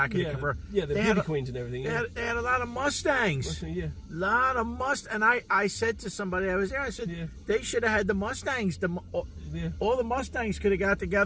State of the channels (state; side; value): identical; both; correlation 1.00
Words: of the converter? Yeah, the beauty queens and everything. Yeah. They had a lot of Mustangs. Yeah. Lot of And I said to somebody, I was there, I said, they should have had the Mustangs. All the Mustangs could have got